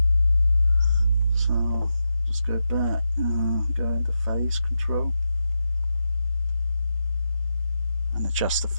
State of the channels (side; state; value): both; inverted; correlation -0.87